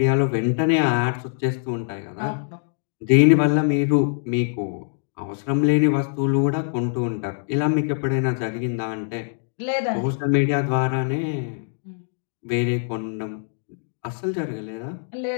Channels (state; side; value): silent; right; 63 dB below the other